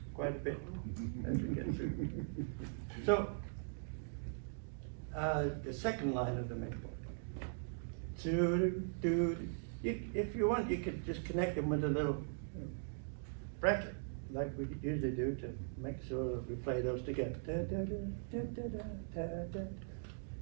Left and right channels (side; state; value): left; silent; digital silence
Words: quite a bit as we get through. So, the second line of the main chord. If you want, you could just connect them with a little bracket, like we usually do to make sure we play those together.